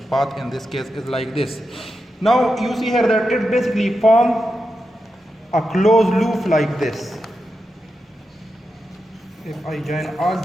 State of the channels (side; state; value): both; normal; correlation 0.88